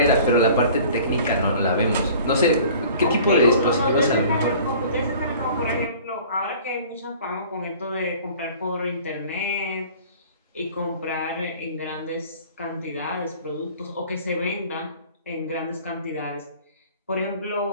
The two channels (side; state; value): both; inverted; correlation -0.48